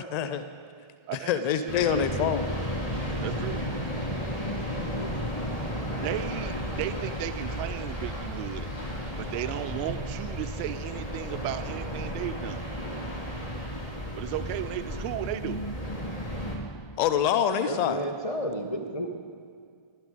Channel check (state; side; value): late; right; 1.8 ms